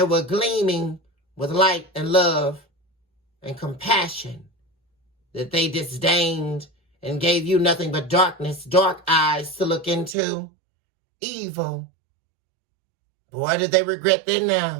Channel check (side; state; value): left; drops out; at 10.2 s